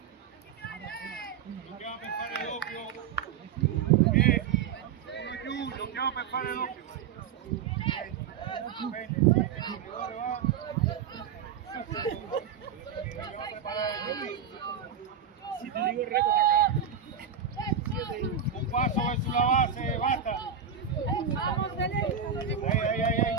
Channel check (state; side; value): quieter; left; 7.4 dB